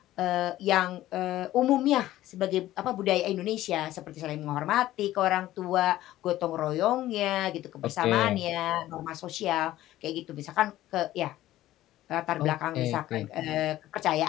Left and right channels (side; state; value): right; quieter; 14.7 dB